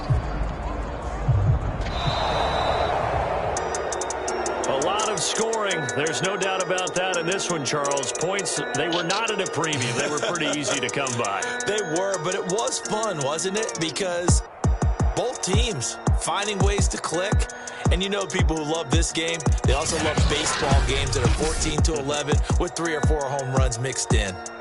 A lot of scoring. There's no doubt about that in this one, Charles. Points, they were not at a premium. They were pretty easy to come by. They were, but it was fun, wasn't it? Because both teams finding ways to click. And you know people who love this game, they also love baseball games that are 14-11 with 3 or 4 home runs mixed in.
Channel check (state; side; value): identical; both; correlation 1.00